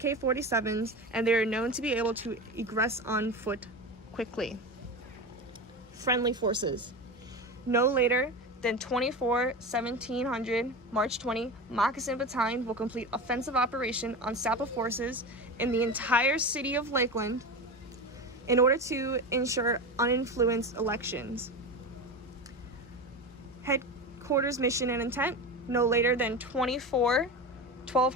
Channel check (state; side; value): normal; both; correlation 0.24